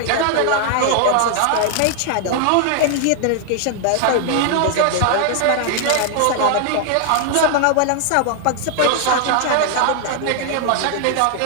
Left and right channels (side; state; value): both; different; correlation 0.00